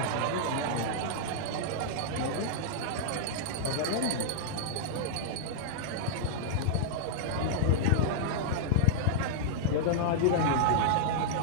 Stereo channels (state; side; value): different; both; correlation -0.02